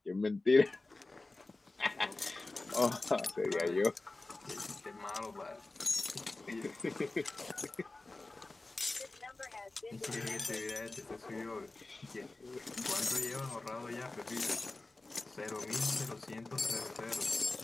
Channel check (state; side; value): quieter; right; 3.1 dB